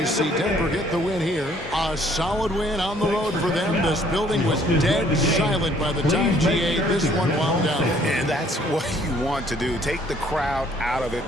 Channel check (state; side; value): normal; both; correlation 0.61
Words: see Denver get the win here. A solid win on the road for them. This building was dead silent by the time GA this one wound down. And that's what you want to do. Take the crowd out of it